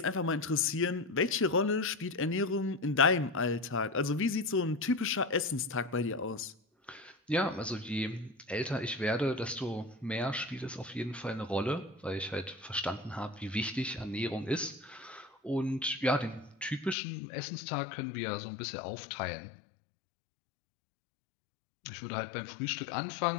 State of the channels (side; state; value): right; drops out; at 16.9 s